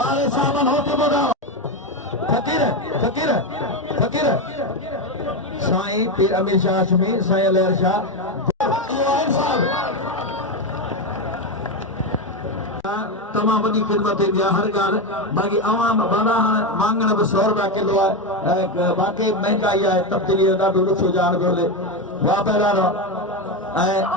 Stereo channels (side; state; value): both; normal; correlation 0.12